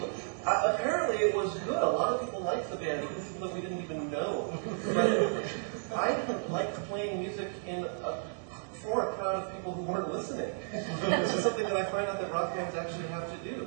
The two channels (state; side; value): silent; left; digital silence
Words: Apparently it was good. A lot of people liked the band, even people that we didn't even know. But I didn't like playing music for a crowd of people who weren't listening. This is something that I find out that rock bands actually have to